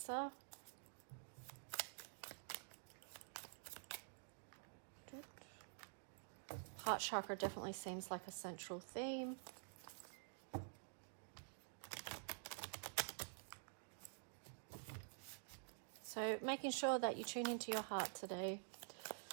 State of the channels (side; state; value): left; silent; digital silence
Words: Heart chakra definitely seems like a central theme. So making sure that you tune into your heart today